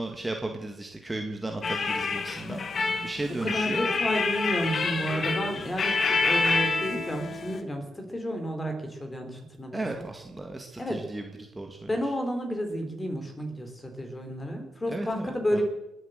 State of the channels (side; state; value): both; normal; correlation 0.88